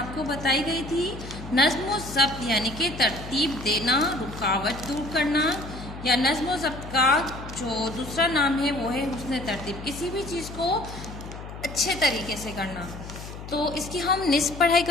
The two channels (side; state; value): left; noise; hum, 12 dB below the sound